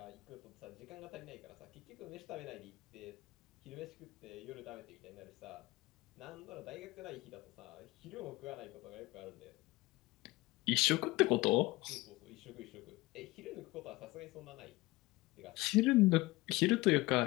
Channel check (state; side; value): quieter; right; 20.6 dB